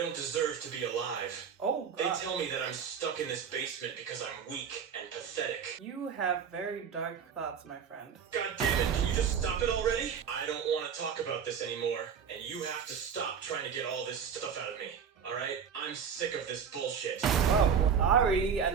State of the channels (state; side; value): quieter; left; 7.1 dB